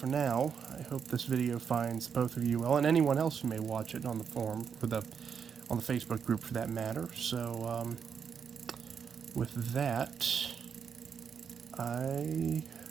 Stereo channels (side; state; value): left; quieter; 6.9 dB